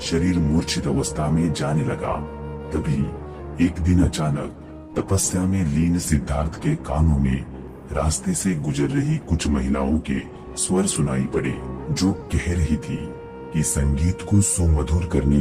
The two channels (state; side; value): identical; both; correlation 1.00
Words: शरीर मूर्छित अवस्था में जाने लगा। तभी एक दिन अचानक तपस्या में लीन सिद्धार्थ के कानों में रास्ते से गुजर रही कुछ महिलाओं के स्वर सुनाई पड़े, जो कह रही थी कि संगीत को सुमधुर करने